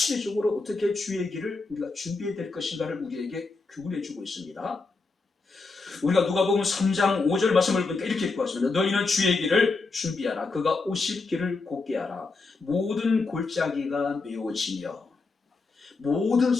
어떻게 주의 길을 우리가 준비해야 될 것인가를 우리에게 교훈해 주고 있습니다. 우리가 누가복음 3장 5절 말씀을 보니까 이렇게 읽고 왔습니다. 너희는 주의 길을 준비하라. 그가 오실 길을 곧게 하라. 모든 골짜기가 메워지며 모든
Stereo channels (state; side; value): quieter; right; 3.9 dB